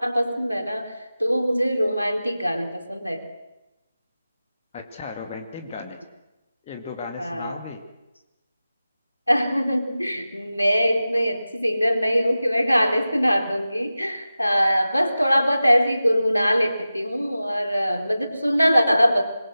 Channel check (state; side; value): inverted; both; correlation -0.94